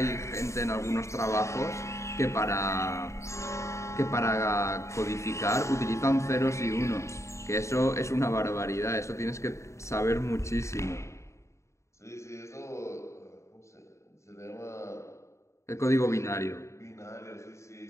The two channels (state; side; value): late; right; 0.14 ms